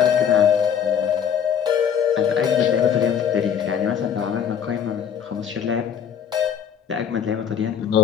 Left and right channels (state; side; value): quieter; right; 8.1 dB